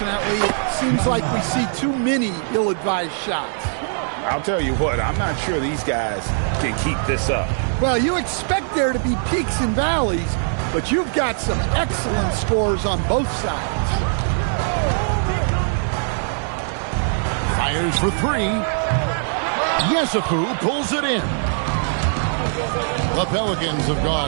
it seems like we see too many ill-advised shots. I'll tell you what, I'm not sure these guys can keep this up. Well, you expect there to be peaks and valleys, but you've got some excellent scores on both sides. Fires for 3. Yesufu pulls it in. The Pelicans have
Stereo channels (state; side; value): silent; left; digital silence